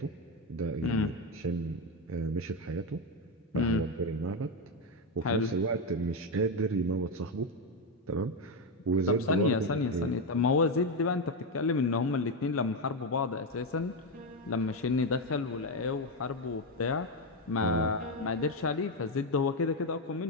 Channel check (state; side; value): normal; both; correlation 0.09